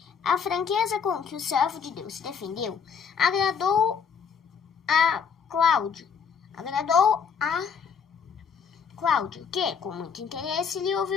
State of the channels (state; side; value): quieter; right; 6.6 dB